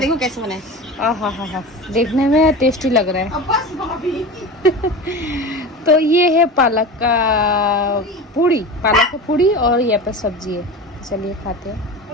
कैसे बना है। आहा, देखने में टेस्टी लग रहा है। अब बस भाभी। तो ये है पालक का पूड़ी, पालक का पूड़ी, और ये पे सब्जी है। चलिए खाते हैं।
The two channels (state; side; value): normal; both; correlation 0.30